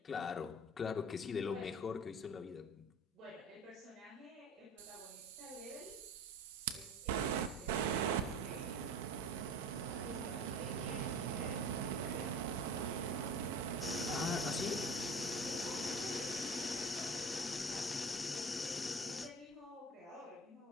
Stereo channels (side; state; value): both; normal; correlation 0.37